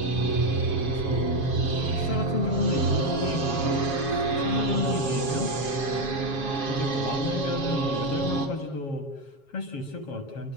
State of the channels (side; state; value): right; late; 7.3 ms